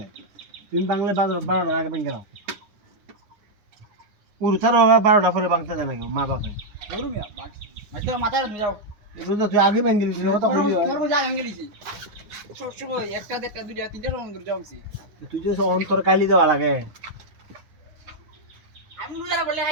তুমি বাংলা 12টার আগে বাঙ্গা নাও উড়তার 12টা পরে বাংতে জানা কেউ মা বাপে ধরু মিয়া মাইতো মাথা যাও রোজা তুই আগে বাঙ্গি দিছিস কথা বলি তোর যা আমি গেলিছি সব সময় একটা দেড়টা দুইটা তিনটা সময় ধরে যাওছি তুই যে অন্তর কাইলি দেওয়া লাগে আমি রোজা বলে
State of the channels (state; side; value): late; left; 9.8 ms